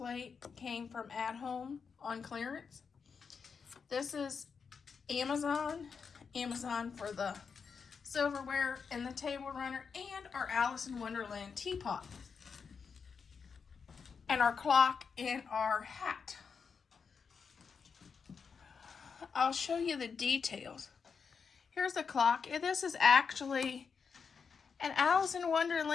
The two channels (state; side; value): quieter; right; 5.8 dB